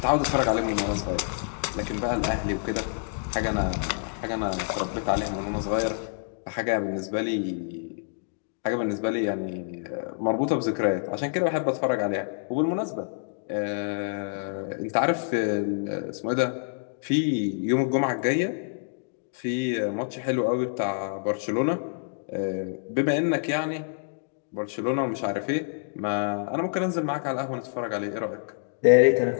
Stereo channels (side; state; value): right; silent; digital silence